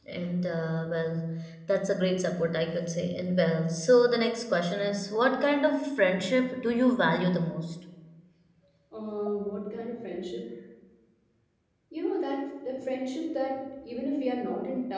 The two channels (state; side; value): identical; both; correlation 1.00